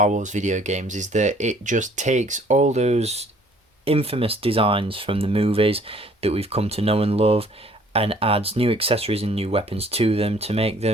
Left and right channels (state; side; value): normal; both; correlation 0.58